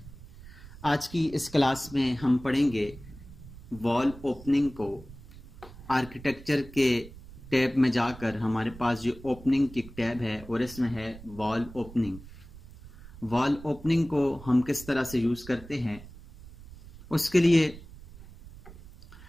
आज की इस क्लास में हम पढ़ेंगे वॉल ओपनिंग को। आर्किटेक्चर के टैब में जाकर हमारे पास ये ओपनिंग की टैब है और इसमें है वॉल ओपनिंग। वॉल ओपनिंग को हम किस तरह से यूज़ करते हैं, उसके लिए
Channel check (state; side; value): noise; right; rumble, 18 dB below the sound